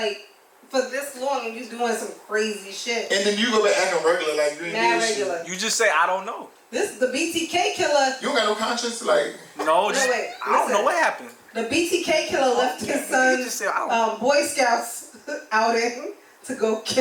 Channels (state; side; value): identical; both; correlation 1.00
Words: for this long and you doing some crazy shit? And then you go back acting regular like you ain't regular. You just say I don't know. The BTK killer. You don't got no conscience, like. No, just, wait, I don't know what happened. The BTK killer left his son Boy Scouts outing to go